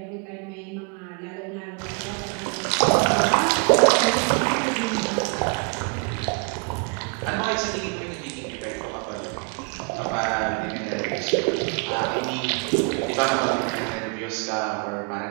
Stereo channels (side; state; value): left; quieter; 35.2 dB